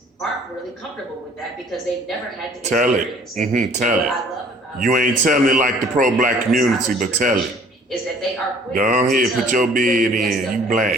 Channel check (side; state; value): both; normal; correlation 0.54